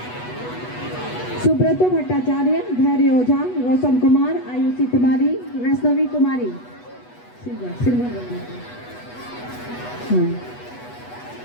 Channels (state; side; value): late; right; 8.2 ms